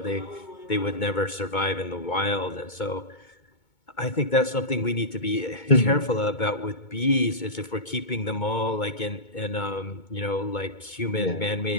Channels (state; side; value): late; right; 2.2 ms